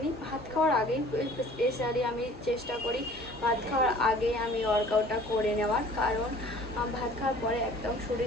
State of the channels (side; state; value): both; normal; correlation 0.49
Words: নিই। ভাত খাওয়ার আগেই স্পেশালি আমি চেষ্টা করি ভাত খাওয়ার আগে আমি ওয়ার্কআউটটা করে নেওয়ার, কারণ ভাত খাওয়ার পরে একদম